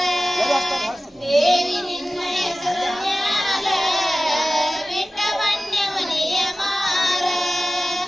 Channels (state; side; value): normal; both; correlation 0.96